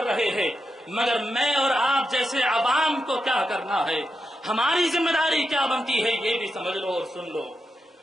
رہے ہیں، مگر میں اور آپ جیسے عوام کو کیا کرنا ہے، ہماری ذمہ داری کیا بنتی ہے، یہ بھی سمجھ لو اور سن لو۔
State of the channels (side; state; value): both; normal; correlation 0.87